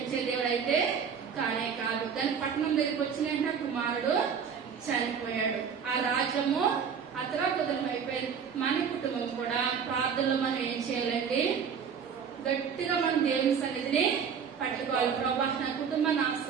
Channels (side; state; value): left; quieter; 6.9 dB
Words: దేవుడు అయితే కానే కాదు. కానీ పట్టణం దగ్గరికి వచ్చిన కుమారుడు చనిపోయాడు. ఆ రాజ్యము అతలాకుతలం అయిపోయింది. మన కుటుంబం కూడా ప్రార్థనలో మనం ఏం చేయాలండి? గట్టిగా మనం దేవుని సన్నిధిని పట్టుకోవాలి. ప్రభా, నా కుటుంబాన్ని